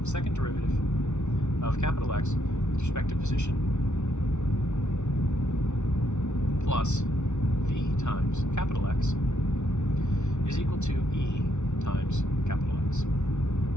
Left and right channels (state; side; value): late; right; 0.83 ms